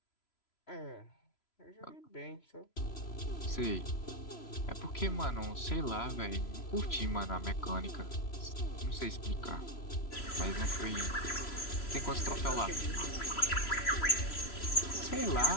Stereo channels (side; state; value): right; late; 3.0 ms